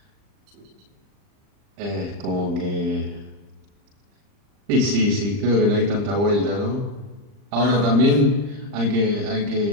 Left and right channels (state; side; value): late; left; 39 ms